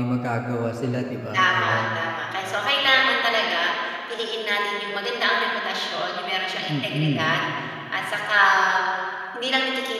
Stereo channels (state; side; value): identical; both; correlation 1.00